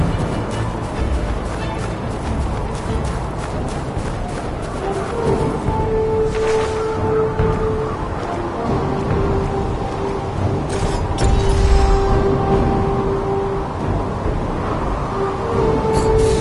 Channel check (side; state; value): both; identical; correlation 1.00